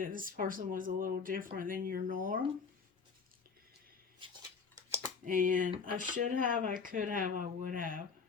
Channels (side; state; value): right; quieter; 5.4 dB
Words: this person was a little different than your norm. And I should have, I could have, I would have.